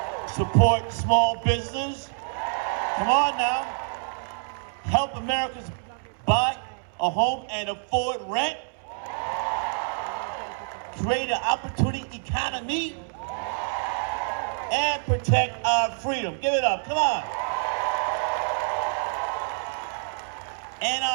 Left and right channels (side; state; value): left; silent; 60 dB below the other